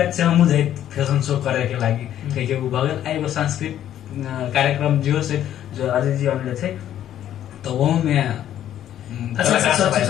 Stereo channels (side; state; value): right; quieter; 11.2 dB